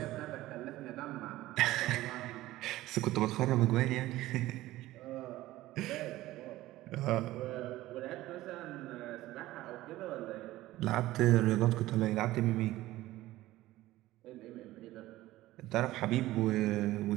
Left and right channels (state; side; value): quieter; left; 16.5 dB